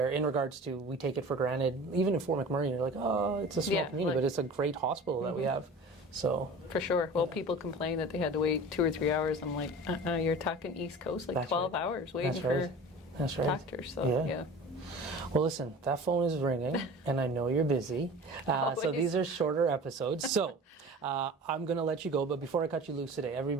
In regards to, we take it for granted, even in Fort McMurray, you're like, oh, it's a small community, but it's a great hospital that we have. So for sure. Well, people complain that they had to wait 2 or 3 hours. I'm like, you're talking East Coast, like 12 hours waiting for doctors. So yeah. Well, listen, that phone is ringing, and I know you're busy. So these are shorter episodes. So I'm going to let you go, but before I cut you loose today,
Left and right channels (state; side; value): normal; both; correlation 0.38